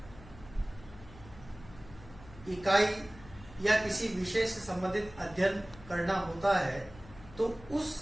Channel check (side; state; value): left; noise; hum, 19 dB below the sound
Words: इकाई या किसी विषय से संबंधित अध्ययन करना होता है तो उस